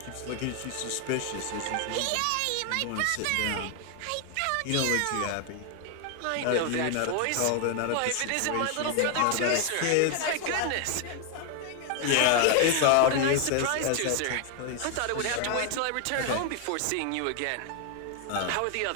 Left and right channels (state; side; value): different; both; correlation 0.00